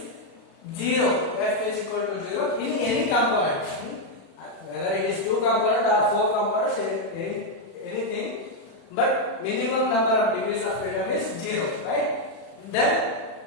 0. F is equal to 0 in any component. Whether it is two component or four components, anything. But minimum number of degrees of freedom is 0, right? Then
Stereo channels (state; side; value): late; right; 36 ms